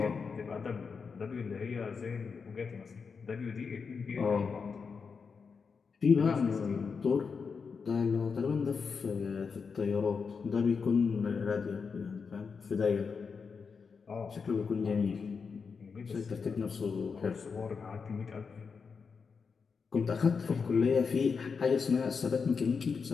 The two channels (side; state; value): right; quieter; 5.5 dB